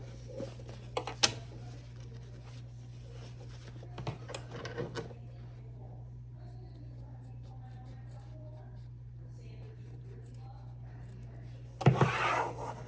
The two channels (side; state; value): both; identical; correlation 1.00